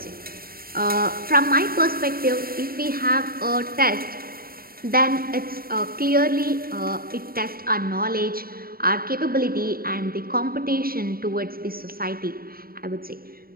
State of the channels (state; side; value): late; left; 0.43 ms